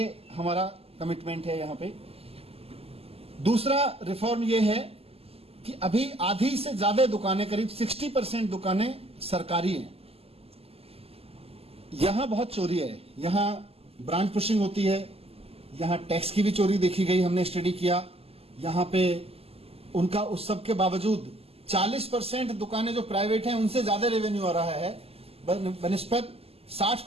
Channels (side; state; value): left; late; 0.29 ms